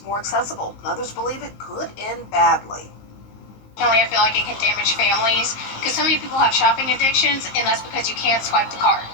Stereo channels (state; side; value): late; right; 19 ms